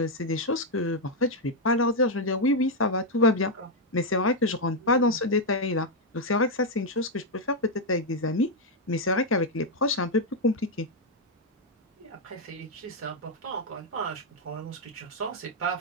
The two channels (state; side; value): normal; both; correlation 0.00